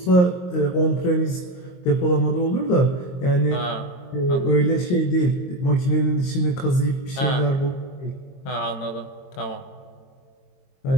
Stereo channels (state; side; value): late; right; 22 ms